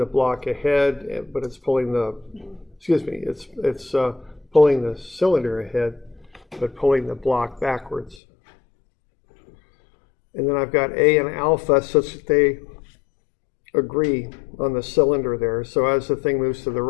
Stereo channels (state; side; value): drops out; right; at 8.2 s